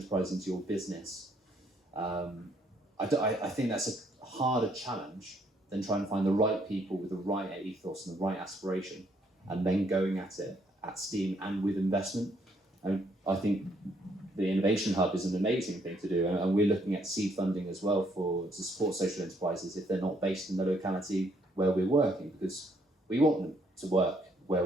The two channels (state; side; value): normal; both; correlation 0.69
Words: into your business, I think that's a harder challenge than trying to find the right people with the right ethos and the right aspiration, and then going at it at steam and with investment. And I think the Innovation Hub is an amazing thing to do, and we're looking at seed funding as well to support social enterprises if they're not based in the locality where we're working, because we want them to work where